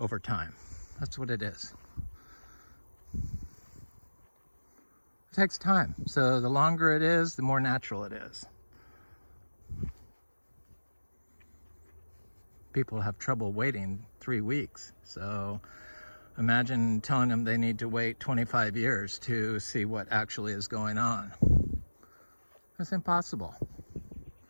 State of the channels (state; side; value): inverted; both; correlation -1.00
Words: time. That's what it is. It takes time. So the longer it is, the more natural it is. People have trouble waiting 3 weeks. So imagine telling them they need to wait 25 years to see what actually is going on. It's impossible.